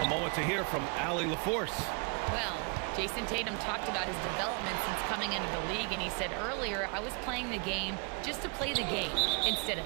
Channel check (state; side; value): quieter; left; 34.6 dB